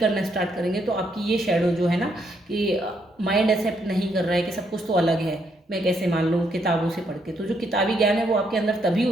स्टार्ट करेंगे, तो आपकी ये शैडो जो है ना कि माइंड एक्सेप्ट नहीं कर रहा है कि सब कुछ तो अलग है, मैं कैसे मान लूँ किताबों से पढ़ के, तो जो किताबी ज्ञान है वो आपके अंदर तभी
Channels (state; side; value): normal; both; correlation 0.74